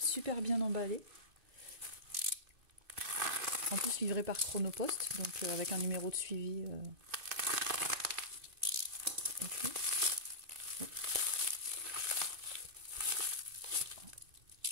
bien emballé. En plus livré par Chronopost, donc avec un numéro de suivi. Et puis,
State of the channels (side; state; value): left; late; 2.6 ms